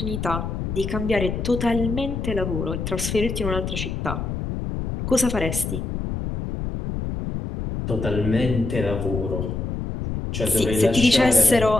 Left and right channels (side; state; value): left; noise; rumble, 4 dB below the sound